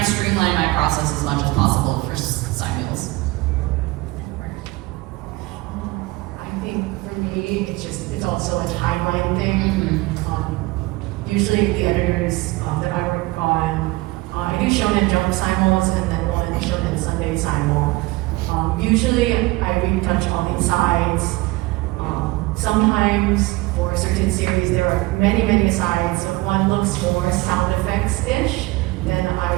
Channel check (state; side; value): quieter; left; 21.3 dB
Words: streamline my process as much as possible for simuls. I think for me, it's also a timeline thing. Usually the editors that I work on, I do Shonen Jump simuls and then one Shonen Sunday simul. Usually I retouch all the asides. Sometimes for a certain series there are many asides, so if one looks more sound effects-ish, then I